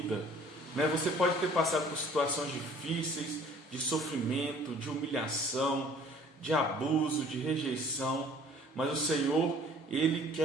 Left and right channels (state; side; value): normal; both; correlation 0.53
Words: Você pode ter passado por situações difíceis, de sofrimento, de humilhação, de abuso, de rejeição, mas o Senhor, ele